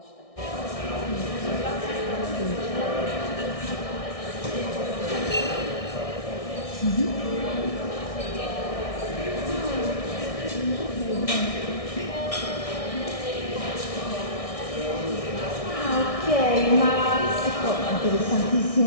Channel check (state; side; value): late; right; 1.6 ms